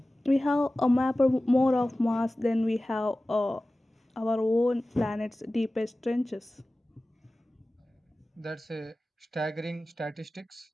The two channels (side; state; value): both; normal; correlation 0.97